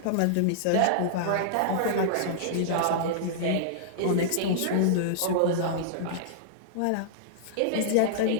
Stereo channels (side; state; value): both; different; correlation -0.02